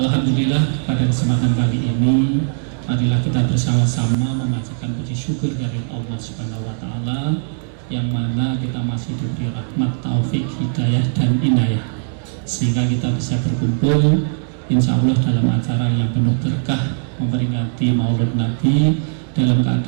pada kesempatan kali ini marilah kita bersama-sama memanjatkan puji syukur dari Allah Subhanahu wa taala yang mana kita masih diberi rahmat, taufik, hidayah dan inayah sehingga kita bisa berkumpul insya Allah dalam acara yang penuh berkah memperingati Maulid Nabi dalam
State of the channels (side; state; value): left; silent; digital silence